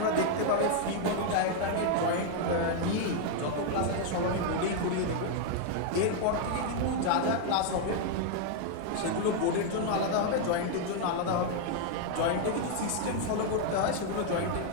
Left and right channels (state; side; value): different; both; correlation 0.00